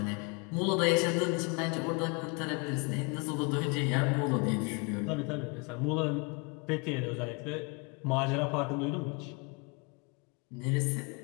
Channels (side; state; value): right; quieter; 31.4 dB